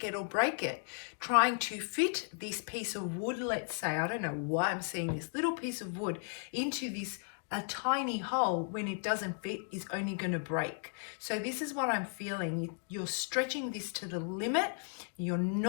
it or break it. Trying to fit this piece of wood, let's say, I don't know why I'm seeing this little piece of wood into this a tiny hole, when it doesn't fit, is only going to break. So this is what I'm feeling. You're stretching this to the limit. You're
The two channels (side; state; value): right; silent; 54 dB below the other